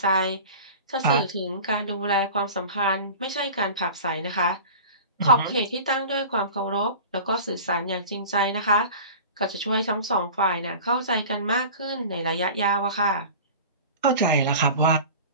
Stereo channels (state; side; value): inverted; both; correlation -0.37